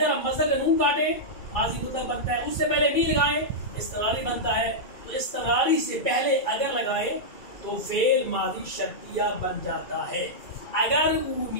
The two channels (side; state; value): right; late; 2.3 ms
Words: ہم مصدر کا نون کاٹیں ماضی مطلق بنتا ہے, اس سے پہلے می لگائیں استمراری بنتا ہے. تو استمراری سے پہلے اگر لگائیں تو فعل ماضی شرطیہ بن جاتا ہے. اگر